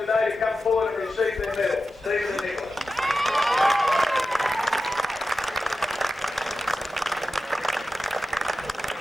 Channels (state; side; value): normal; both; correlation 0.92